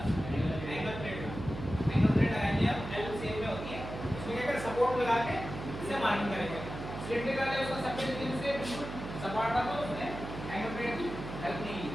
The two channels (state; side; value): noise; right; hum, 8 dB below the sound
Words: एंगल प्लेट लगाएंगे हम, एल शेप में होती है, इसमें क्या कर सपोर्ट लगा के इसे मार्किंग करेंगे। सिलेंडर का उसका सरफेस से बिल्कुल सपाट था तो उसने एंगल प्लेट की हेल्प नहीं ली,